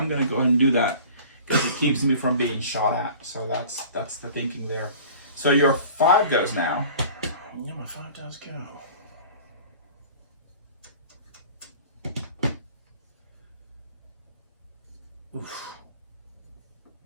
gonna go ahead and do that because it keeps me from being shot at. So that's the thinking there. So your 5 goes now. Yeah, my 5 does go. Oof.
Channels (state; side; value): inverted; both; correlation -0.44